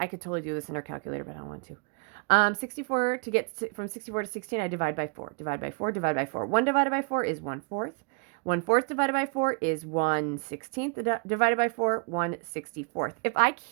could totally do this in our calculator, but I don't want to. 64, to get from 64 to 16, I divide by 4. Divide by 4, divide by 4. 1 divided by 4 is 1/4. 1/4 divided by 4 is 1/16. Divided by 4, 1/64. If I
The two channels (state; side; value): quieter; left; 33.5 dB